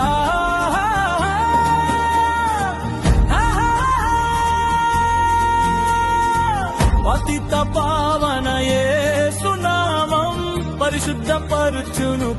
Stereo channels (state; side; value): identical; both; correlation 1.00